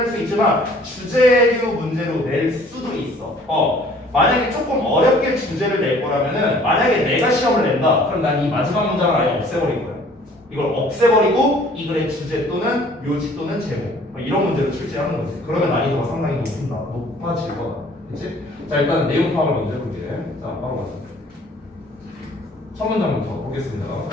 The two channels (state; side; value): normal; both; correlation 0.54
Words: 수 있지만 주제류 문제로 낼 수도 있어. 만약에 조금 어렵게 주제를 낼 거라면은 만약에 내가 시험을 낸다. 그럼 난 이 마지막 문장을 아예 없애버릴 거야. 이걸 없애버리고 이 글의 주제 또는 묘지 또는 제목 이런 문제를 출제하는 거지. 그러면 난이도가 상당히 높아질 거다. 그치? 자, 일단 내용 파악을 먼저 해볼게. 자, 바로 가자. 첫 문장부터 보겠습니다.